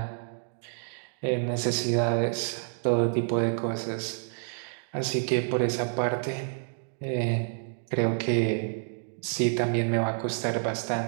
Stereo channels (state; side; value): silent; left; digital silence